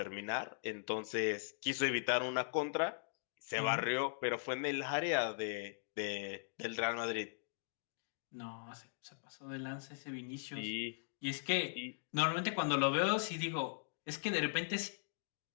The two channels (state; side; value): silent; right; digital silence